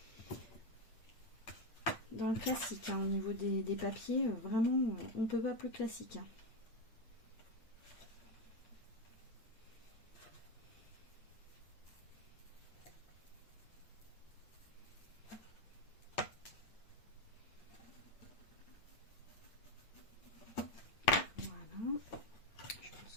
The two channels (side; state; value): right; late; 8.9 ms